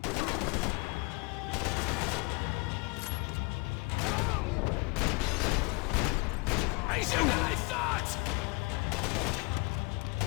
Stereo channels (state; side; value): quieter; right; 28.7 dB